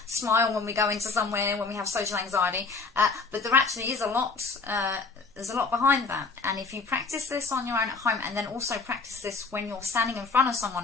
smile when we go into somewhere, when we have social anxiety, but there actually is a lot, there's a lot behind that, and if you practice this on your own at home, and then also practice this when you're standing in front of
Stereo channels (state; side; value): quieter; right; 4.3 dB